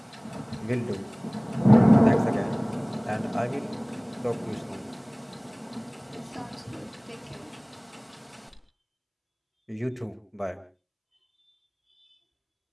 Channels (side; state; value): both; identical; correlation 1.00